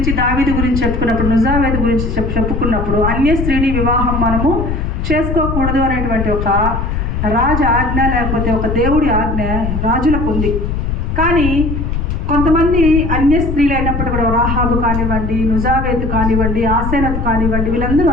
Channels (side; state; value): left; noise; rumble, 2 dB below the sound